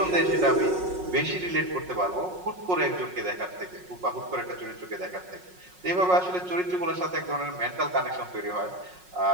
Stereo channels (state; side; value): late; left; 5.5 ms